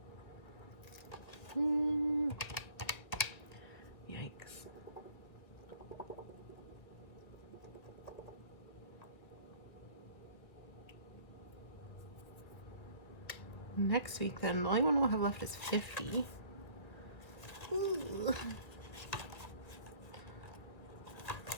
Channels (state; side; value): late; right; 2.0 ms